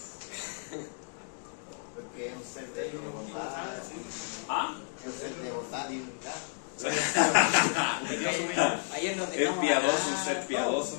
Porque es un ser de bondad, ¿Ah? es un ser de bondad y unidad. ayer nos Es dejamos. piadoso, un ser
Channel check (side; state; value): right; silent; 57 dB below the other